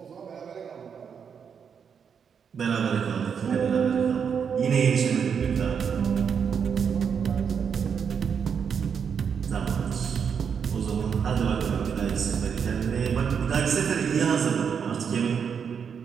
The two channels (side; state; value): left; quieter; 7.0 dB